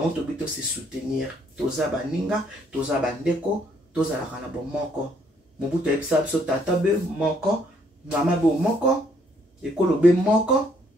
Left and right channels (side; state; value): both; normal; correlation 0.68